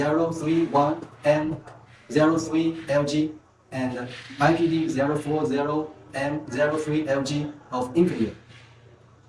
and IPD040M03LG of Infineon.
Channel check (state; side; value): identical; both; correlation 1.00